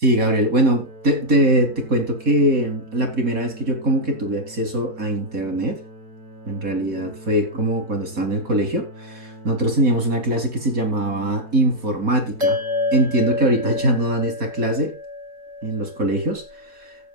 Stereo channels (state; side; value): late; left; 4.1 ms